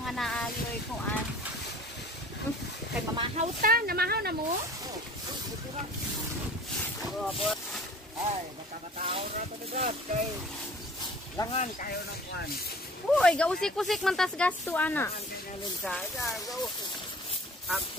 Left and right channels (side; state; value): both; normal; correlation 0.47